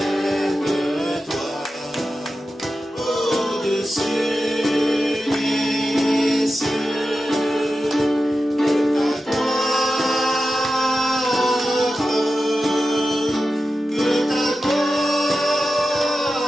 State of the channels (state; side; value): normal; both; correlation 0.92